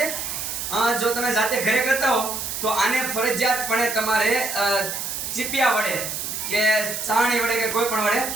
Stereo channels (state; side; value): noise; right; hiss, 4 dB below the sound